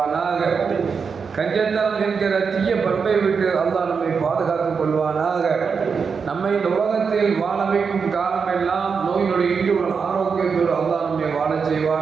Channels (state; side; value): quieter; left; 5.7 dB